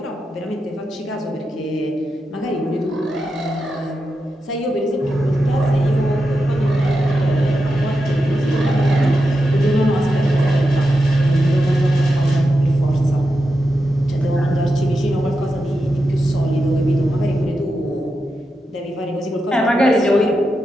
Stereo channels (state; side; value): normal; both; correlation 0.88